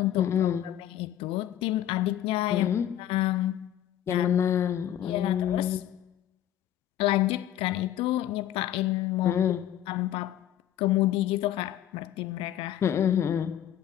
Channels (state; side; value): quieter; right; 11.5 dB